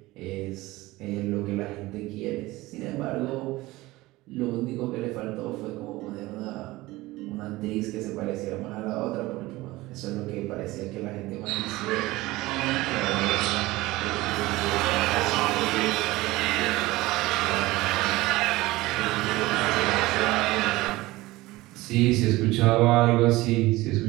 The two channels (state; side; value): quieter; left; 19.3 dB